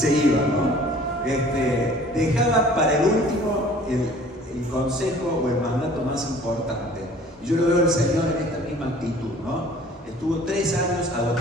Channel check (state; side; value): normal; both; correlation 0.51